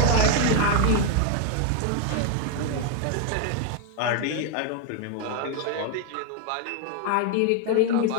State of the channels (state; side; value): different; both; correlation 0.01